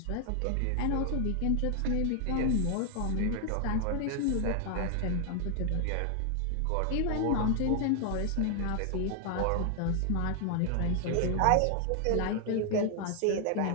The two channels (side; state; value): both; different; correlation 0.00